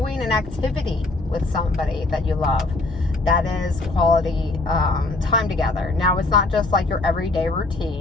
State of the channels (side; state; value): right; quieter; 3.2 dB